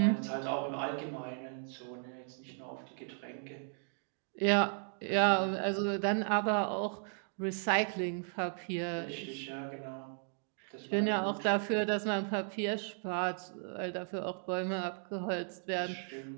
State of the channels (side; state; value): left; silent; 54 dB below the other